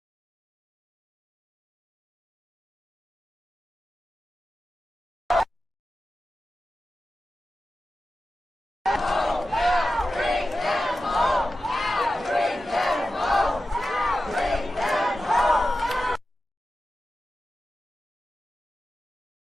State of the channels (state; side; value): normal; both; correlation 0.93